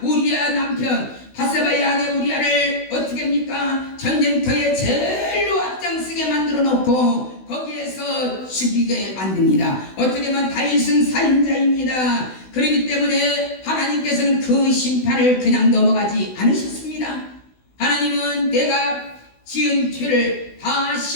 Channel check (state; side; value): late; right; 16 ms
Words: 우리아 남편 바세바의 아내 우리아를 어떻게 합니까? 전쟁터에 제일로 앞장서게 만들어 놓고 거기에서 죽이게 만듭니다. 어떻게 보면 다윗은 살인자입니다. 그렇기 때문에 하나님께서는 그 심판을 그냥 넘어가지 않으셨습니다. 하나님은 내가 지은 죄를 다